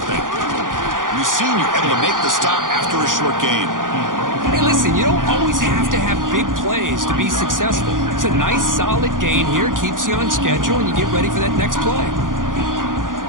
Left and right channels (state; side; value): late; left; 0.89 ms